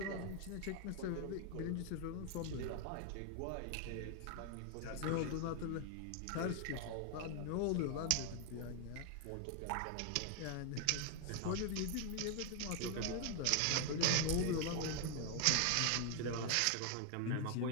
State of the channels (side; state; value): both; different; correlation 0.00